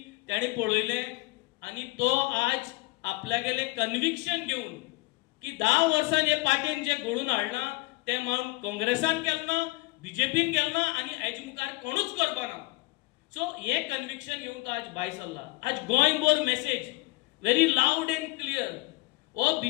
ताणें पळयलें आनी तो आज आपल्यागेलें कन्विक्शन घेवन की 10 वर्सां हे पार्टीन जे घडोवन हाडलां तें मागून काँग्रेसान केलें ना, बीजेपीन केलें ना आनी हेजे मुखार कोणूच करपाना. सो हे कन्विक्शन घेवन तो आज भायर सरला. आज गोंयभर message very loud end clear. हो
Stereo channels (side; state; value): right; quieter; 22.4 dB